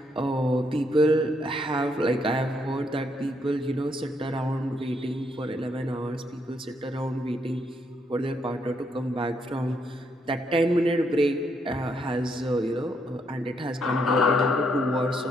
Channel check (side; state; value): both; normal; correlation 0.75